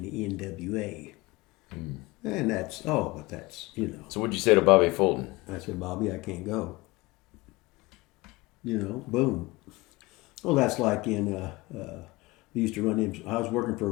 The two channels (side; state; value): right; quieter; 22.3 dB